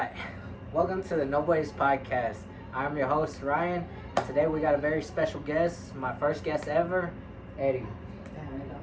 welcome to the No Boys Podcast. I'm your host, Ryan, and today we got a very special guest, my first guest ever, Eddie.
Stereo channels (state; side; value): identical; both; correlation 1.00